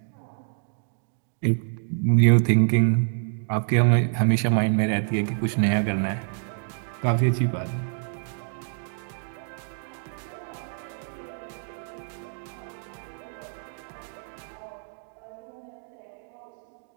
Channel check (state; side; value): silent; left; 60 dB below the other